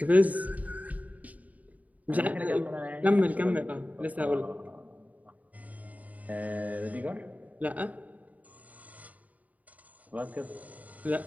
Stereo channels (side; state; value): left; late; 0.073 ms